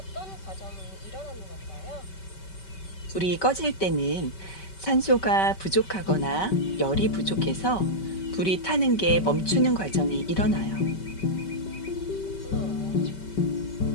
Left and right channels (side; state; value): right; late; 5.2 ms